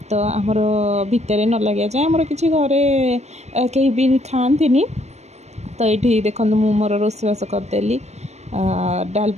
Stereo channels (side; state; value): left; late; 0.32 ms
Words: तो आमर भितर न लगे जाए आमर किसी घरे कहीं भी खाती तो ये देखो मु मोर रोषेबास करदेली